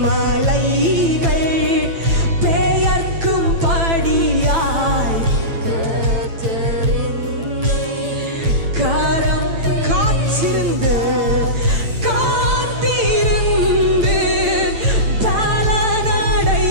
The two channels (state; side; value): late; left; 9.0 ms